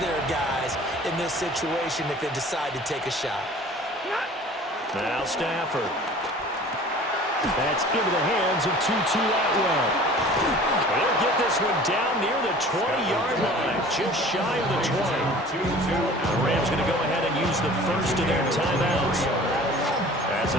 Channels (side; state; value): both; normal; correlation 0.45